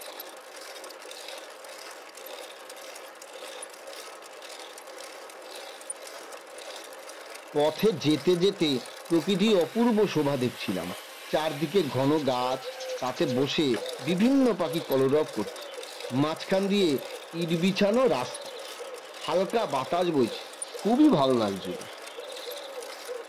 পথে যেতে যেতে প্রকৃতির অপূর্ব শোভা দেখছিলাম। চারদিকে ঘন গাছ, তাতে বসে বিভিন্ন পাখি কলরব করছে। মাঝখান দিয়ে ইট বিছানো রাস্তা, হালকা বাতাস বইছে, খুবই ভালো লাগছিল।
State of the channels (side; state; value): both; identical; correlation 1.00